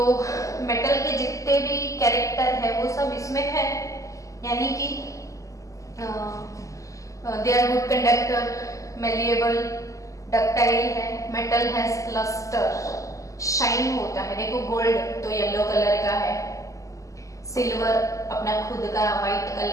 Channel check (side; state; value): right; late; 0.16 ms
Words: मेटल के जितने भी कैरेक्टर है वो सब इसमें है, यानी कि they are good conductor, malleable, ductile है, मेटल हैज लस्टर, शाइन होता है। देखो गोल्ड तो येलो कलर का है, सिल्वर अपना खुद का व्हाइट